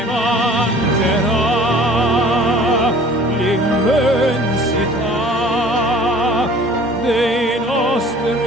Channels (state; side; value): normal; both; correlation 0.48